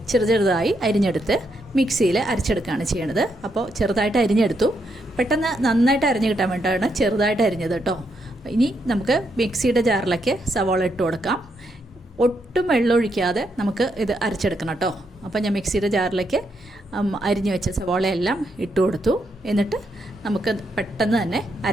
ചെറുതായി അരിഞ്ഞെടുത്ത് മിക്സിയിൽ അരച്ചെടുക്കുകയാണ് ചെയ്യണത്. അപ്പോൾ ചെറുതായിട്ട് അരിഞ്ഞെടുത്തു. പെട്ടെന്ന് നന്നായിട്ട് അരിഞ്ഞ് കിട്ടാൻ വേണ്ടിയിട്ടാണ് ചെറുതായിട്ട് അരിഞ്ഞത് കേട്ടോ. ഇനി നമുക്ക് മിക്സിയുടെ ജാറിലേക്ക് സവാള ഇട്ട് കൊടുക്കാം. ഒട്ടും വെള്ളം ഒഴിക്കാതെ നമുക്ക് ഇത് അരച്ചെടുക്കണം കേട്ടോ. അപ്പോൾ ഞാൻ മിക്സിയുടെ ജാറിലേക്ക് അരിഞ്ഞു വെച്ച സവാളയെല്ലാം ഇട്ട് കൊടുത്തു. എന്നിട്ട് നമുക്ക് പെട്ടെന്ന് തന്നെ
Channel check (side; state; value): both; normal; correlation 0.79